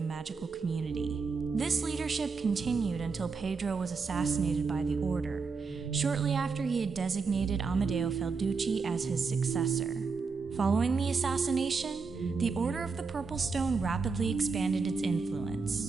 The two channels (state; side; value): quieter; left; 4.8 dB